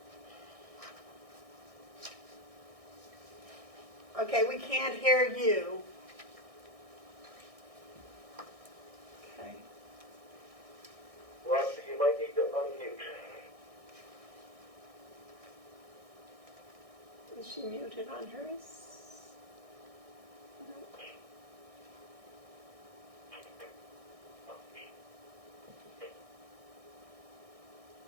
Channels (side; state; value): left; late; 1.6 ms